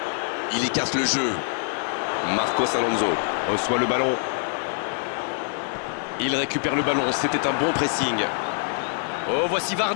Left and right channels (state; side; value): silent; right; digital silence